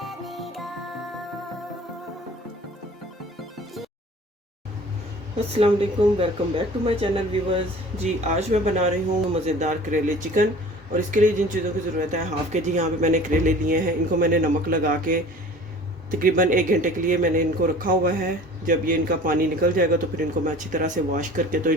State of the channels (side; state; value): both; normal; correlation 0.45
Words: me go. अस्सलाम वालेकुम, welcome back to my channel viewers. जी आज मैं बना रही हूँ मज़ेदार करेले चिकन। और इसके लिए जिन चीज़ों की ज़रूरत है, हाफ़ के जी यहाँ पे मैंने करेले लिए हैं। इनको मैंने नमक लगा के तकरीबन 1 घंटे के लिए मैंने इनको रखा हुआ है। जब ये इनका पानी निकल जाएगा तो फिर इनको मैं अच्छी तरह से वॉश करके तो